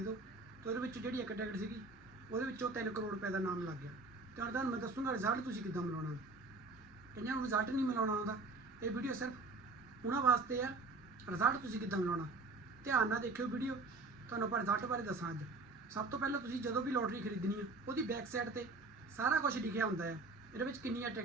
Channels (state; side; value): quieter; left; 3.5 dB